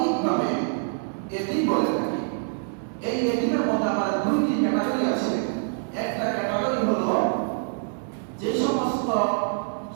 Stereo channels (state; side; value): silent; left; 60 dB below the other